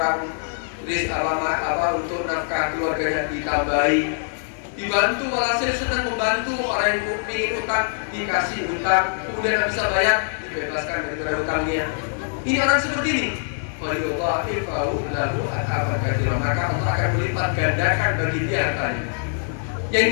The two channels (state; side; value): silent; right; 63 dB below the other